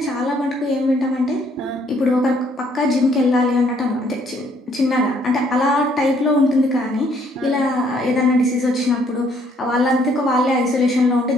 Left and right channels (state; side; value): normal; both; correlation 0.66